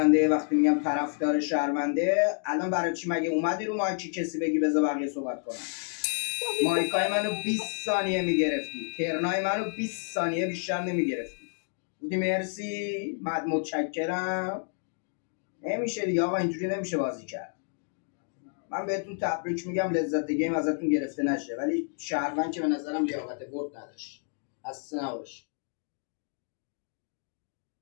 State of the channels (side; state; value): right; silent; 58 dB below the other